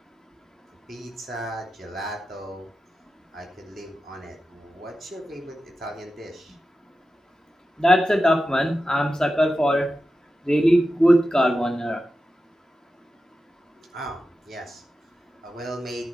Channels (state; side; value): normal; both; correlation 0.92